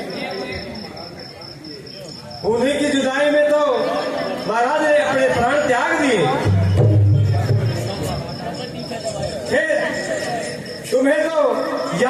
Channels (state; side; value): identical; both; correlation 1.00